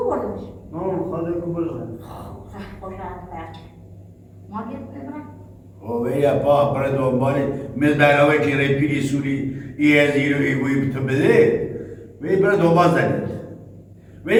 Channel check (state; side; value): identical; both; correlation 1.00